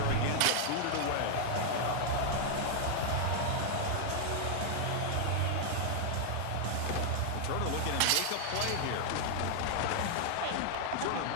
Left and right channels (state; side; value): different; both; correlation 0.00